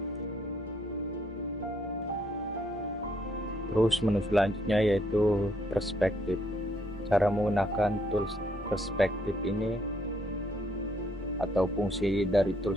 Terus menu selanjutnya yaitu perspektif. Cara menggunakan tools perspektif ini atau fungsi dari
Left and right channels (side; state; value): both; normal; correlation 0.70